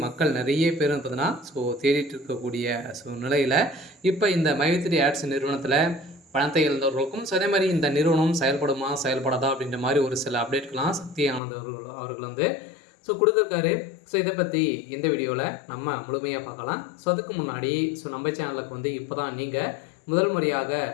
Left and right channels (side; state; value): right; drops out; at 11.4 s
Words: மக்கள் நிறைய பேர் பார்த்தீங்கன்னா தேடிட்டு இருக்கக்கூடிய நிலையில் இப்போ இந்த மைத்ரி ஆட்ஸ் நிறுவனத்தில் பணத்தை இழந்தவர்களுக்கும் அதே மாதிரி இந்த நிறுவனம் செயல்படுமா செயல்படாதா அப்படின்ற மாதிரி ஒரு சில அப்டேட்கள்லாம் சக்தி ஆனந்த் அவர்கள் கொடுத்துருக்காரு. இதை பற்றி இந்த வீடியோவில் நம்ம முழுமையாக பார்க்கலாம். அதுக்கு முன்னாடி நம்ம சேனலுக்கு இப்போ தான் நீங்கள் முதல் முறையாக